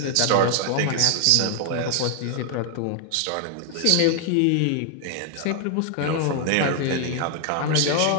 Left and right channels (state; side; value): different; both; correlation 0.00